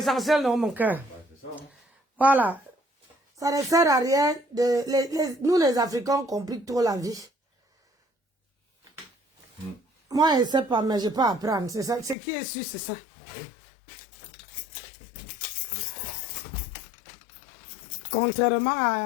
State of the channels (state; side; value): drops out; right; at 12.2 s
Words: dans mon cœur. Voilà. Ça ne sert à rien. Nous les Africains, on complique trop la vie. Moi, je ne sais pas, mais je peux apprendre. C'est ça. Ce qui est sûr, c'est ça. Contrairement